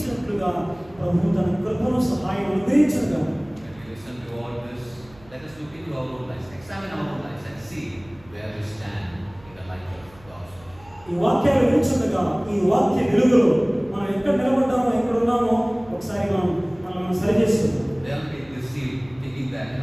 ప్రభు తన కృపను సహాయం అనుగ్రహించగా When we listen to all this, let us look into our own lives, examine our own lives and see where we stand in the light of God's word. ఈ వాక్యాలు వింటుండగా ఈ వాక్య వెలుగులో మనం ఎక్కడ నిలబడ్డామో ఎక్కడ ఉన్నామో ఒకసారి మనం సరి చేసుకుందాం. Don't be deceived thinking that,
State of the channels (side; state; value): right; noise; hum, 25 dB below the sound